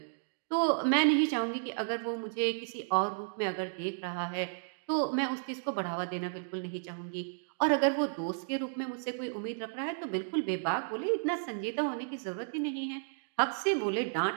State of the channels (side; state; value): left; silent; digital silence